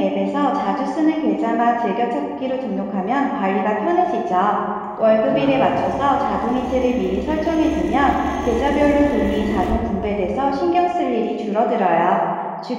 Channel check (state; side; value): identical; both; correlation 1.00